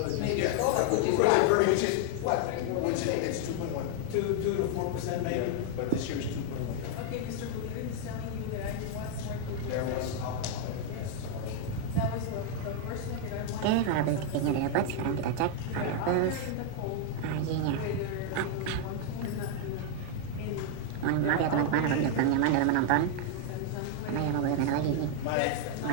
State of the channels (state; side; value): different; both; correlation 0.00